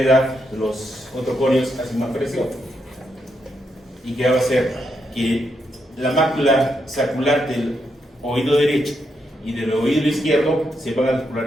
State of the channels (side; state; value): both; normal; correlation 0.81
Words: los otoconios hacen más presión. ¿Y qué va a hacer? que la mácula sacral del oído derecho y del oído izquierdo se van a